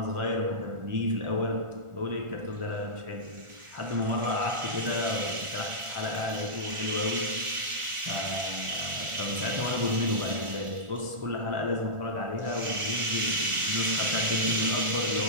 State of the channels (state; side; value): late; left; 1.4 ms